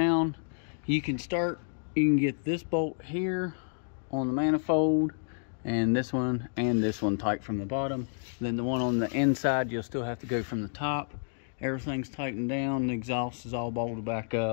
You can get this bolt here on the manifold, and this one tight from the bottom. Then the one on the inside, you'll still have to go from the top. Everything's tightened down, the exhaust is all bolted back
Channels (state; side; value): silent; right; digital silence